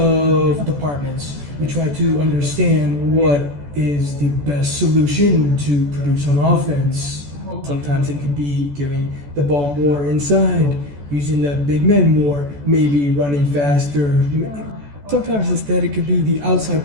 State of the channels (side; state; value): left; late; 14 ms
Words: departments, we try to understand what is the best solution to produce on offense. Sometimes it could be giving the ball more inside, using the big men more, maybe running faster. Sometimes instead it could be the outside